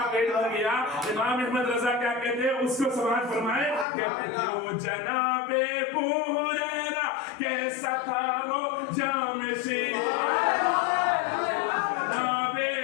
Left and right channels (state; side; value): drops out; right; at 3.9 s